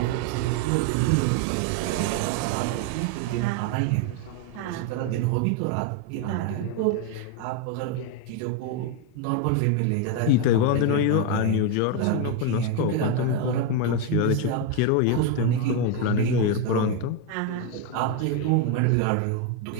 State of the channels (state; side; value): different; both; correlation 0.01